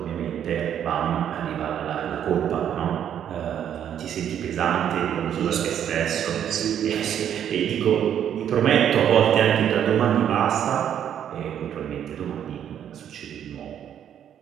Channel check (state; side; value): quieter; left; 9.5 dB